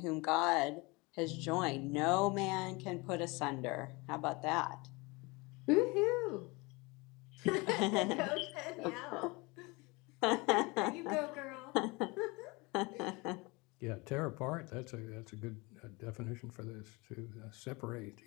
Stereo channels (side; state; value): right; quieter; 25.7 dB